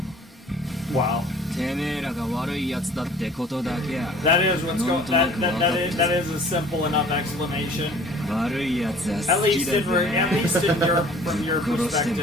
Wow. てめえらが悪いやつだってことだけや。 That is what's going. That is a simple enough explanation. 悪いやつは At 好き least だ in ぜ。 from your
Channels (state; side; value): normal; both; correlation 0.50